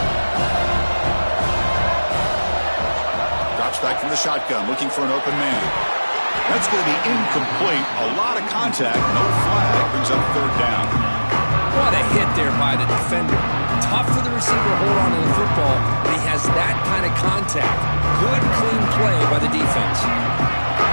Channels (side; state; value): both; inverted; correlation -1.00